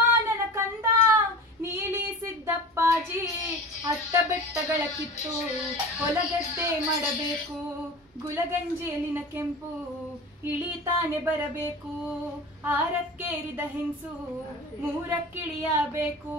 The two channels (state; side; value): normal; both; correlation 0.34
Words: ನನ್ನ ಕಂದ, ನೀಲಿ ಸಿದ್ದಪ್ಪಾಜಿ ಅಟ್ಟ ಬೆಟ್ಟಗಳ ಕಿತ್ತು ಹೊಲಗದ್ದೆ ಮಾಡಬೇಕು. ಗುಲಗಂಜೇಲಿನ ಕೆಂಪು ಇಳಿತಾನೆ ಬರಬೇಕು. ಆರಕ್ಕೇರಿದ ಹೆಂಗಸು ಮೂರಕ್ಕಿಳಿಯಬೇಕು.